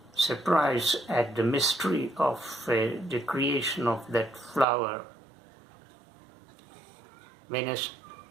at the mystery of the creation of that flower.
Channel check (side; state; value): left; drops out; at 4.7 s